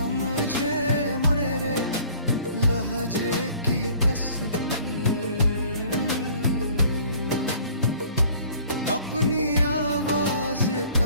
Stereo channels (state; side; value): inverted; both; correlation -0.52